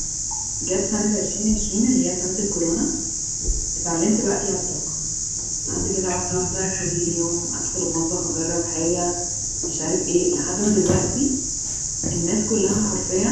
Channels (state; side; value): identical; both; correlation 1.00